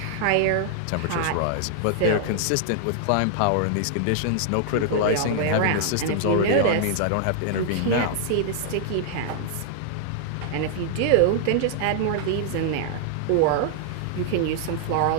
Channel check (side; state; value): both; different; correlation -0.01